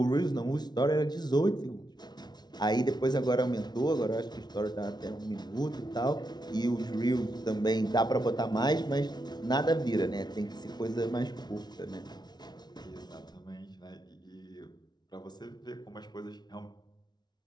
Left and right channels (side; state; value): right; late; 0.20 ms